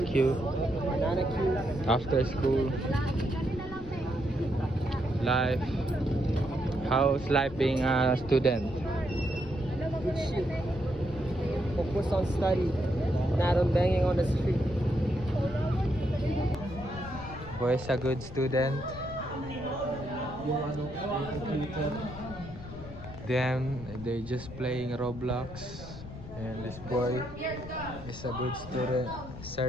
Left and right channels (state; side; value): noise; left; rumble, 13 dB below the sound